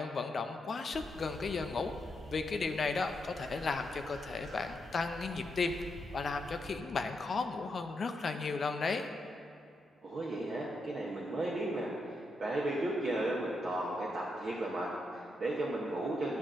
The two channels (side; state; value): both; normal; correlation 0.82